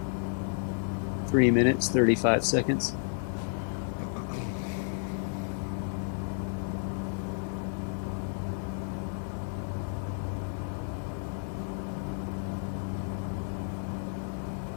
3 minutes, 35 seconds.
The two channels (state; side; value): silent; right; 57 dB below the other